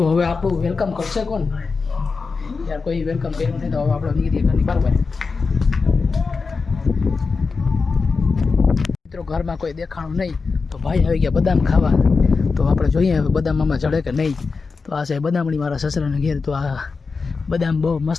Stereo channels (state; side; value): quieter; right; 4.6 dB